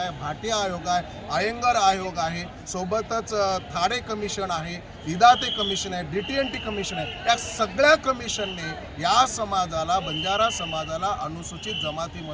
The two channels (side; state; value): both; identical; correlation 1.00